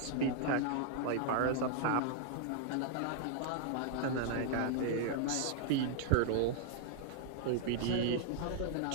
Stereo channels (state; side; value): different; both; correlation 0.00